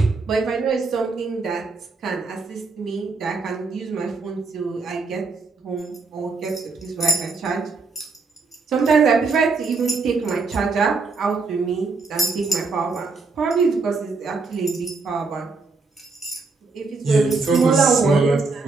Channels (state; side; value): quieter; left; 4.1 dB